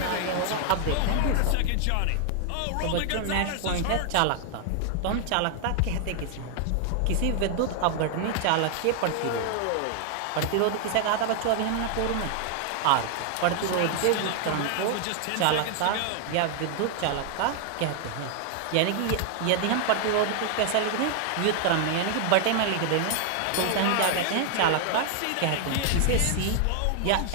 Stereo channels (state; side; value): different; both; correlation 0.00